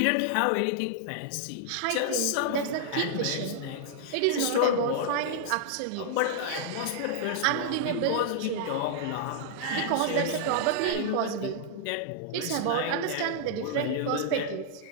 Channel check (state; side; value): different; both; correlation -0.01